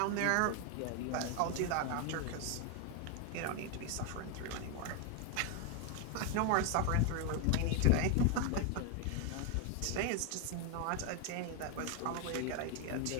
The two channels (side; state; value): both; different; correlation 0.01